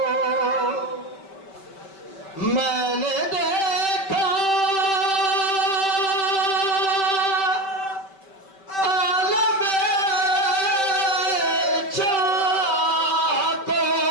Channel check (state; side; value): late; right; 5.2 ms